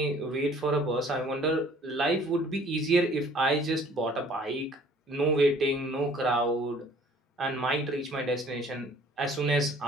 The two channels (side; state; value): both; normal; correlation 0.54